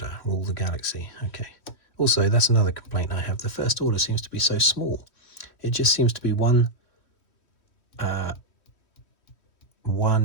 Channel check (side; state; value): right; late; 3.1 ms